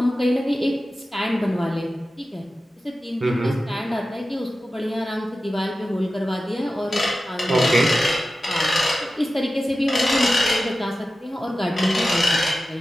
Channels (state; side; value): normal; both; correlation 0.94